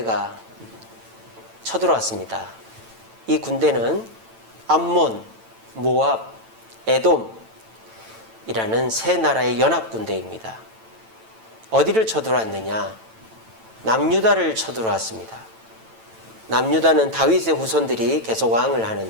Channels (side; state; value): left; late; 9.0 ms